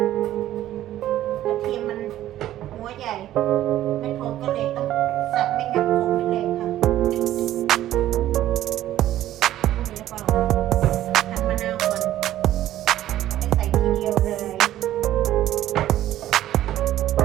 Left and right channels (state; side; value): quieter; left; 13.3 dB